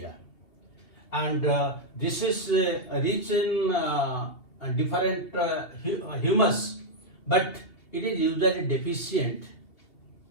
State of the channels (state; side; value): late; right; 2.8 ms